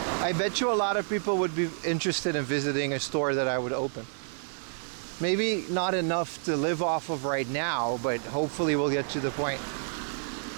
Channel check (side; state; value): left; silent; 58 dB below the other